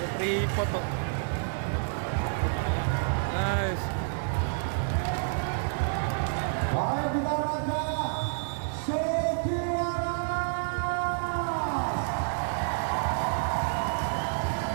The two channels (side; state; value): left; silent; 59 dB below the other